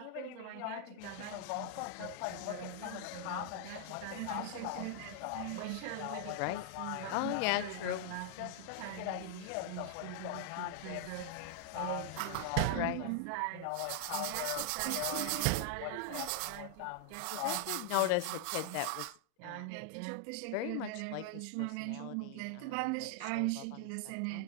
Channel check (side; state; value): both; different; correlation 0.00